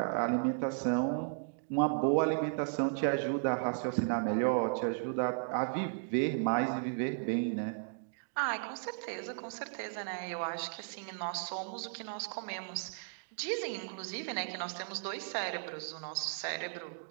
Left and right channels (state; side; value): silent; left; digital silence